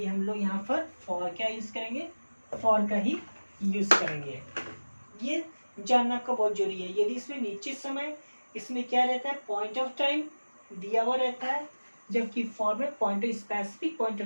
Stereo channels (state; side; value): inverted; both; correlation -1.00